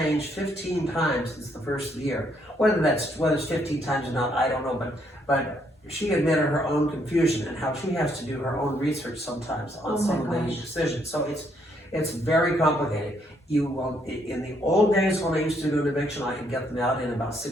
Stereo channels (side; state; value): both; normal; correlation 0.72